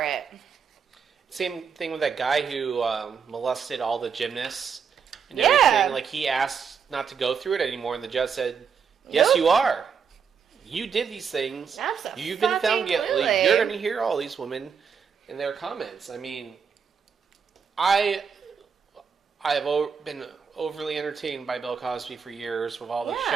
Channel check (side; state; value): left; quieter; 6.5 dB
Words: it. Same thing with that guy who molested all the gymnasts and Yeah. everything. Like, he asked not to go through it anymore, and the judge said, yes, Nope. you are. You did these things. You've been found guilty. Absolutely. You're going to hear all these women in their comments. I mean, I have been overly entertained by Bill Cosby for years with all the